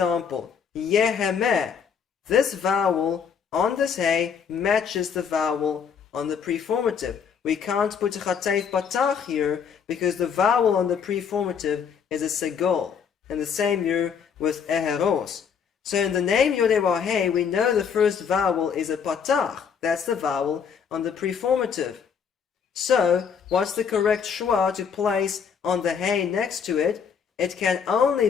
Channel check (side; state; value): right; quieter; 6.9 dB